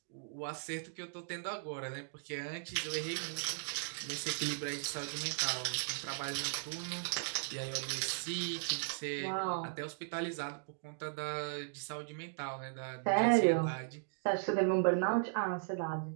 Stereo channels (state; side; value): silent; left; digital silence